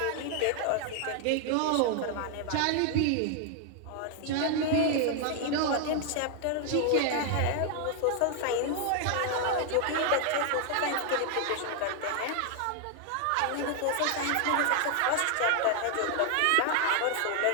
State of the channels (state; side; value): different; both; correlation 0.00